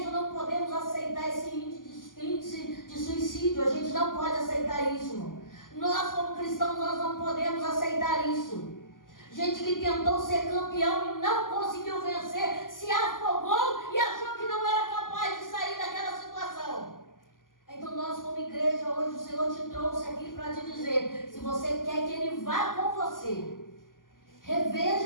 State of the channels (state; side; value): late; right; 0.90 ms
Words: não podemos aceitar esse índice de suicídio. A gente não pode aceitar isso, irmão. Nós, como cristãos, nós não podemos aceitar isso. Gente que tentou ser campeão e não conseguiu vencer, se afogou e achou que não era capaz de sair daquela situação. Então nós, como igreja, hoje o Senhor te trouxe aqui para te dizer, se você quer que Ele vá com você,